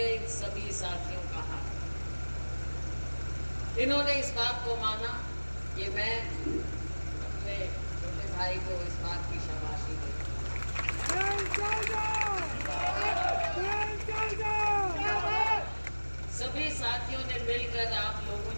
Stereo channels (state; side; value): inverted; both; correlation -1.00